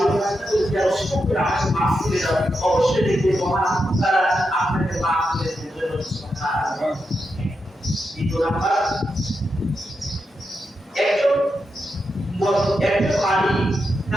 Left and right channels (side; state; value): both; normal; correlation 0.86